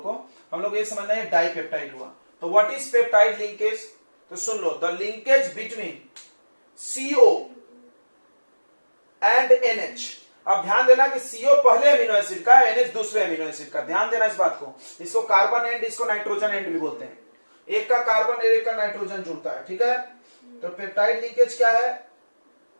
को, हम लोग ये समझना है डाइपेप्टाइड हुआ। तो व्हाट इज पेप्टाइड लिंकेज, तो सुन लो, the linkage between CO and NH। अब ध्यान देना कि CO पहले अमीनो एसिड का है, NH दूसरे अमीनो एसिड का, ध्यान देना इस बात को। इसको कार्बन एंड, इसको नाइट्रोजन एंड भी बोलते हैं। एक का कार्बन और एक का नाइट्रोजन जुड़ता है, ठीक है। तो पेप्टाइड लिंकेज क्या है,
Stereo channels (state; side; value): inverted; both; correlation -1.00